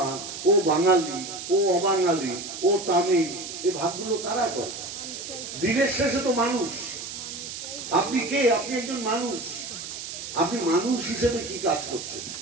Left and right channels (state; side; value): noise; right; hiss, 9 dB below the sound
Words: ও বাঙালি, ও অবাঙালি, ও তামিল, এই ভাগগুলো কারা করে? দিনের শেষে তো মানুষ। আপনি কে? আপনি একজন মানুষ। আপনি মানুষ হিসেবে কি কাজ করছেন?